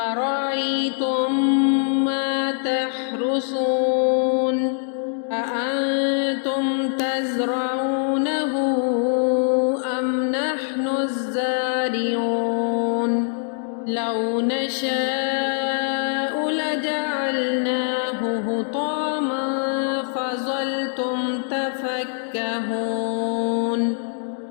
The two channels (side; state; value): right; silent; digital silence